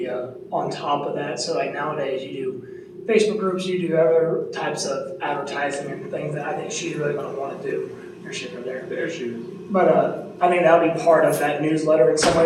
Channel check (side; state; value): both; identical; correlation 1.00